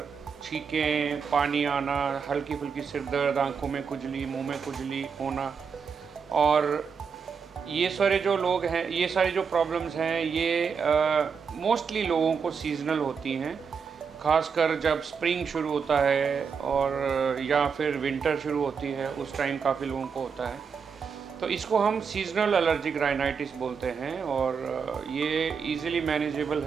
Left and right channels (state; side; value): quieter; left; 6.1 dB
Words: छींकें, पानी आना, हल्की फुल्की सिर दर्द, आँखों में खुजली, मुंह में खुजली होना। और ये सारे जो लोग हैं, ये सारी जो प्रॉब्लम्स हैं, ये मोस्टली लोगों को सीज़नल होती हैं। ख़ासकर जब स्प्रिंग शुरू होता है और या फिर विंटर शुरू होती है, उस टाइम काफ़ी लोगों को होता है। तो इसको हम सीज़नल एलर्जिक राइनाइटिस बोलते हैं और ये इजीली मैनेजेबल